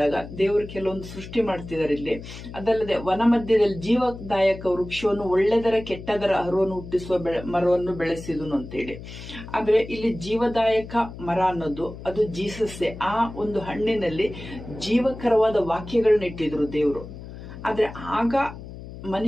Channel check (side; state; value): left; noise; hum, 13 dB below the sound